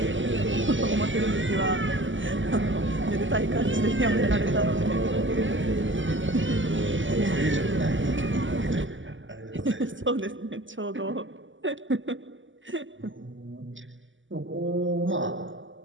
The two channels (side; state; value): left; late; 0.55 ms